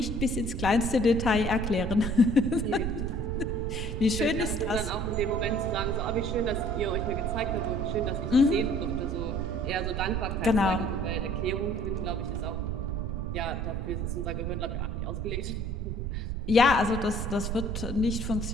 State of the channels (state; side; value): noise; right; rumble, 3 dB below the sound